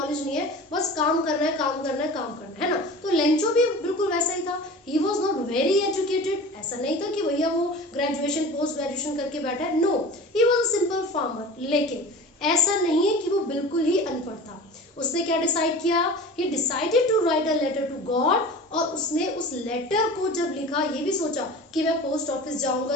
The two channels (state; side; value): normal; both; correlation 0.37